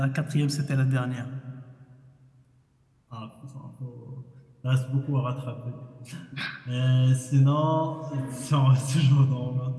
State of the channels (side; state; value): both; identical; correlation 1.00